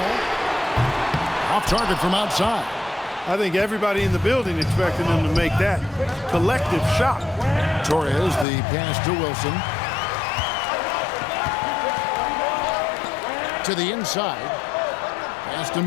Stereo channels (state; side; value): drops out; right; at 8.5 s